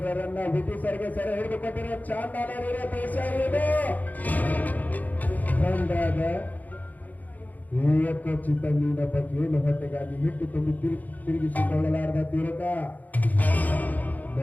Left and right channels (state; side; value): late; right; 0.081 ms